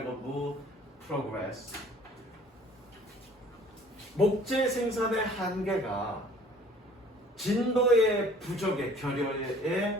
of wood progress. 목재 생산의 한계가 진도의 부족의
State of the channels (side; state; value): both; normal; correlation 0.52